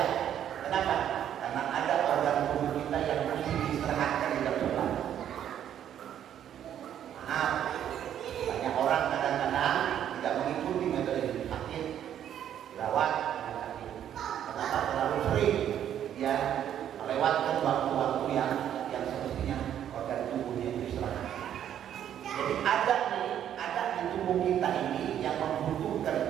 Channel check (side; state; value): left; quieter; 10.2 dB